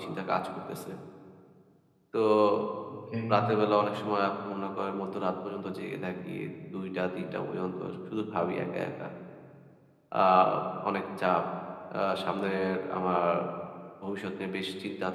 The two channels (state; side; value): identical; both; correlation 1.00